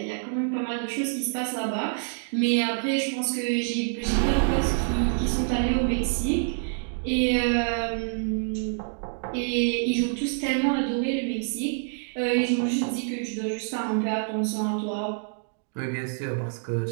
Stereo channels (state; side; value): silent; left; digital silence